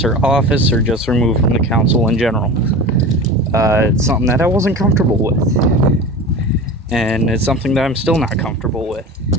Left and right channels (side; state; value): both; normal; correlation 0.32